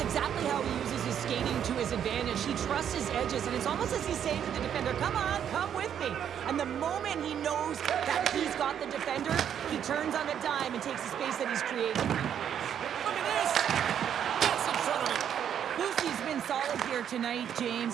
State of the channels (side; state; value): left; quieter; 9.0 dB